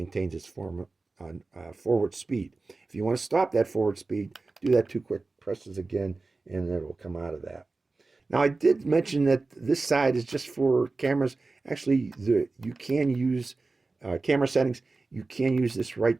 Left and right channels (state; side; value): quieter; left; 3.6 dB